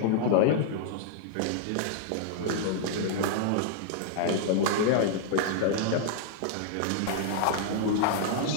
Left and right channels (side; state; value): both; different; correlation -0.01